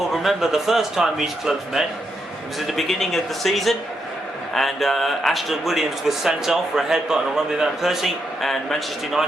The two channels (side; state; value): both; normal; correlation 0.81